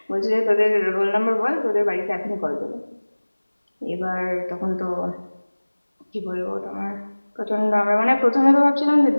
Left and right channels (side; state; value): both; inverted; correlation -1.00